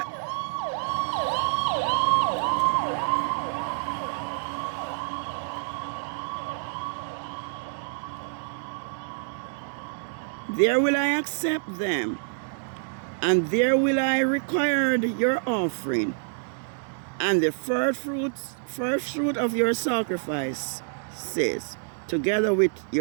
I accept them, and there will I require your offering, and the first fruit of your sacrifices, together with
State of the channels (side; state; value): left; silent; digital silence